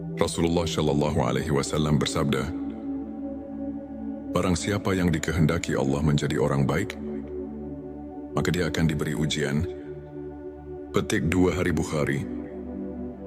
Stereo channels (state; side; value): identical; both; correlation 1.00